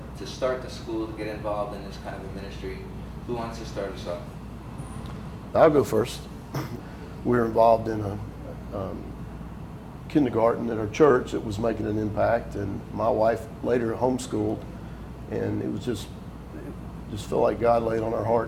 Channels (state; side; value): identical; both; correlation 1.00